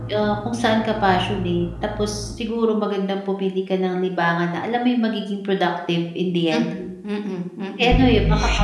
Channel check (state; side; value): identical; both; correlation 1.00